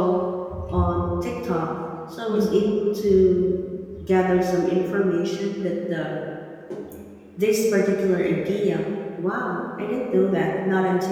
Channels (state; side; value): identical; both; correlation 1.00